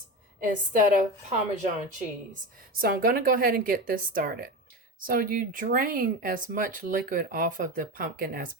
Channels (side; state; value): both; normal; correlation 0.23